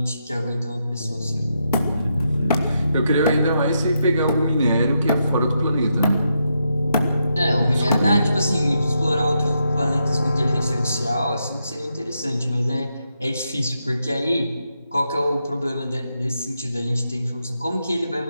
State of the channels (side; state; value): both; inverted; correlation -0.82